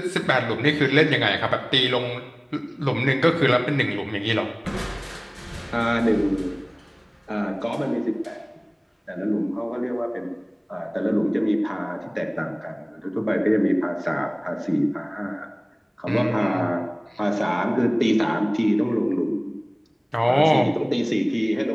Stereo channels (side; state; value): both; identical; correlation 1.00